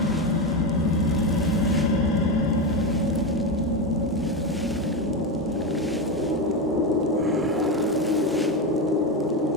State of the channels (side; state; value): both; normal; correlation 0.14